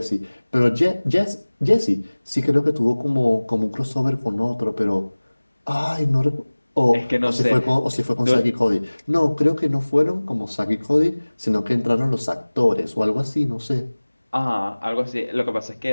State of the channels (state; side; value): inverted; both; correlation -1.00